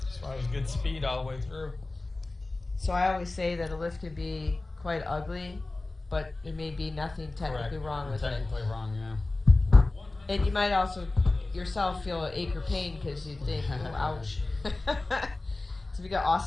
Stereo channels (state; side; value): quieter; right; 3.1 dB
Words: That's why it was good speed all the way through. So I always say that a lift can be quite ugly, but there may be nothing technically wrong with technically it. Wrong, yeah. And you might also yourself feel an ache or pain because you think, oh, ouch. So we got